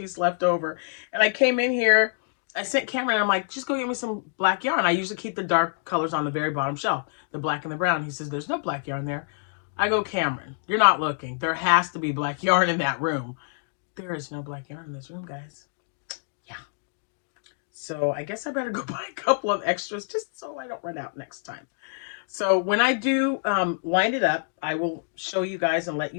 left over. And I came in here, I sent Cameron, I'm like, just go get me some black yarn. I usually keep the dark colors on the very bottom shelf, the black and the brown. He says, there's no black yarn there. I go, Cameron, you're not looking. There has to be black yarn in that room. There is no black yarn in this room, guys. Yeah. So I guess I better go buy a couple of extras just so I don't run out next time. So when I do line it up, I will show you guys and let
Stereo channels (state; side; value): silent; right; digital silence